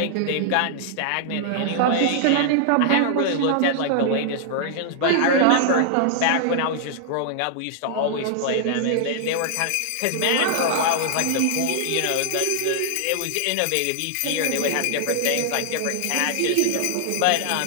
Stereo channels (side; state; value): both; different; correlation -0.01